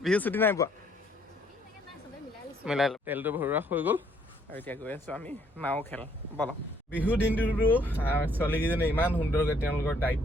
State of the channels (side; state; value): both; normal; correlation 0.66